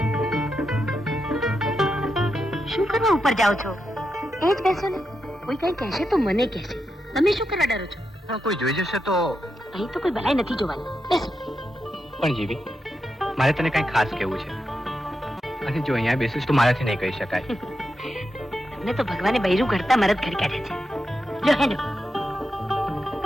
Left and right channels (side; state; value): both; normal; correlation 0.86